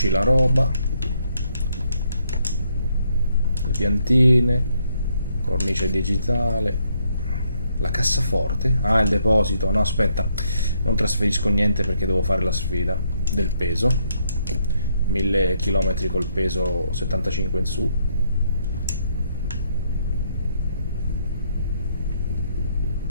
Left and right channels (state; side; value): inverted; both; correlation -0.73